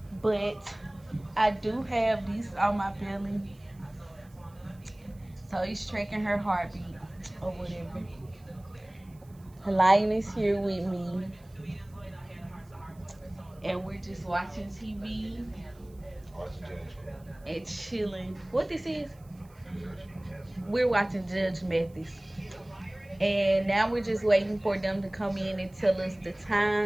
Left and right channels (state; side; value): noise; right; hiss, 30 dB below the sound